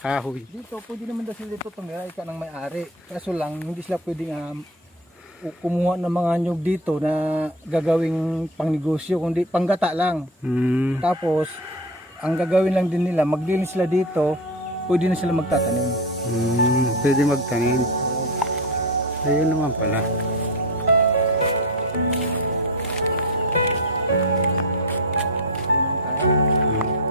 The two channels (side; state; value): both; normal; correlation 0.24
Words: dito, pwede naman daw sila dito tumira ika ng may-ari. Kaso lang, hindi sila pwedeng kumuha ng mga nyug dito na gagawing pangnegosyo, kundi panggata lang. Tapos, ang gagawin lang din nila, maglinis sila dito, pwede na sila magtatanim. Pwede magtanim. Ayun naman pala.